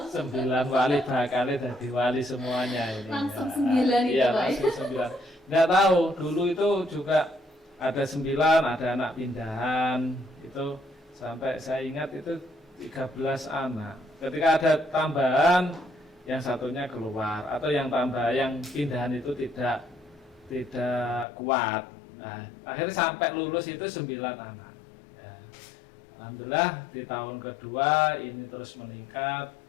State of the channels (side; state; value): right; drops out; at 21.2 s